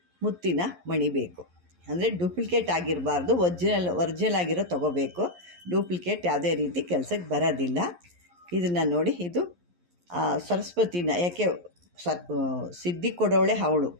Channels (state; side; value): late; left; 11 ms